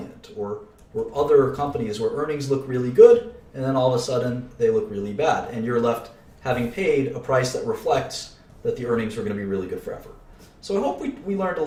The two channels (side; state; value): both; identical; correlation 1.00